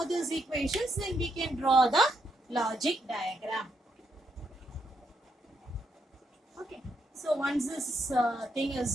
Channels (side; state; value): both; normal; correlation 0.78